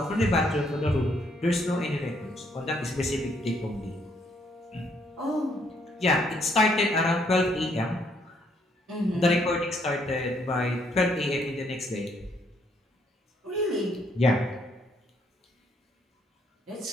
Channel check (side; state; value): both; normal; correlation 0.70